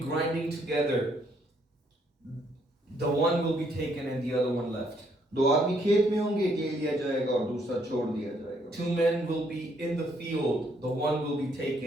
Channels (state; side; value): normal; both; correlation 0.70